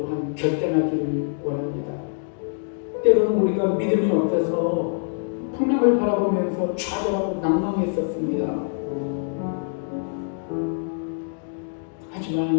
결단하기를 원합니다. 때로는 우리가 믿음이 없어서 풍랑을 바라보면서 좌절하고 낭망했었습니다.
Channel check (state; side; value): silent; right; 62 dB below the other